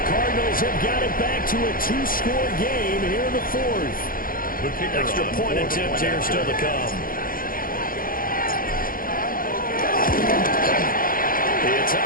Cardinals have got it back to a 2-score game here in the 4th. Extra point attempt here still to come. It's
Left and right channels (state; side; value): late; right; 0.41 ms